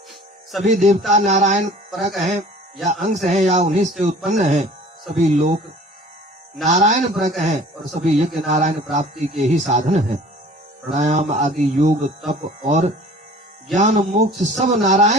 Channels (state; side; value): normal; both; correlation 0.47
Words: सभी देवता नारायण परक हैं, या अंश हैं या उन्हीं से उत्पन्न हैं। सभी लोक नारायण परक हैं और सभी यज्ञ नारायण प्राप्ति के ही साधन हैं। प्राणायाम आदि योग तप और ज्ञान मोक्ष सब